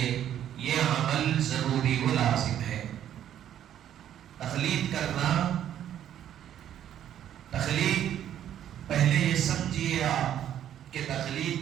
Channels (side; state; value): left; quieter; 10.7 dB